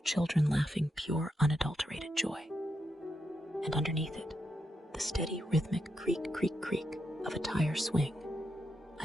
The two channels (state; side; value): normal; both; correlation 0.83